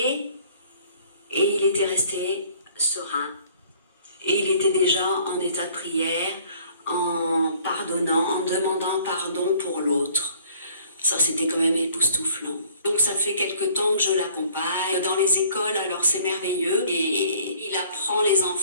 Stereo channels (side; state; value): both; inverted; correlation -0.56